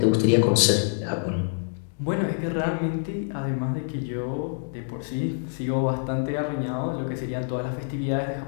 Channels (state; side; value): silent; right; digital silence